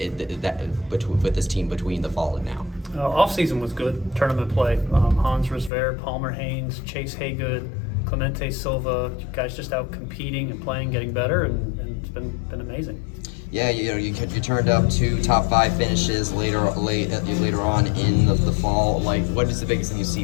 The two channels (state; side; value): drops out; right; at 5.7 s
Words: with this team between the fall and now? Off season was good. Tournament play. Hans Rosver, Palmer Haynes, Chase Haygood, Clemente Silva. Guys just out competing and playing, getting better, and it's been amazing. Yeah, you turned up 2 top 5 finishes later on in the fall. Like, what is the biggest thing you